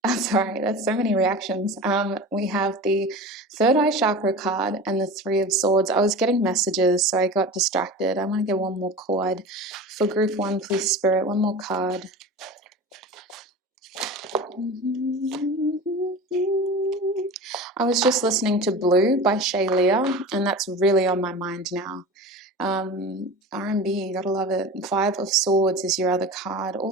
I'm sorry, that's so many reactions. We have the third eye chakra card and the Three of Swords. I was getting messages, so I got distracted. I want to get one more card. For group 1, please, Spirit, one more card. I was just listening to Blue by Shay Leah, and that's really on my mind now. R&B, gotta love it. Five of Swords is your other card.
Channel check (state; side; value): normal; both; correlation 0.33